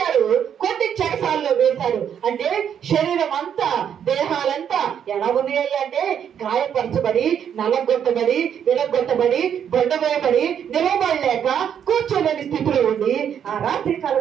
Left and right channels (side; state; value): left; quieter; 8.6 dB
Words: కొట్టి చెరసాలలో వేశారు. అంటే శరీరం అంతా, దేహాలంతా ఎలా ఉన్నాయి అంటే గాయపరచబడి, నలగొట్టబడి, విరగొట్టబడి, బండ వేయబడి, నిలబడలేక కూర్చోలేని స్థితిలో ఉండి ఆ రాత్రికాల